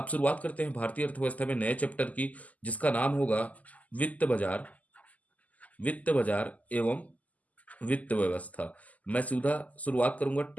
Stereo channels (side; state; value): right; late; 0.075 ms